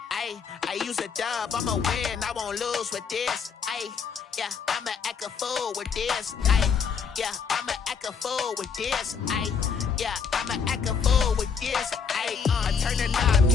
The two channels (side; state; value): right; quieter; 6.3 dB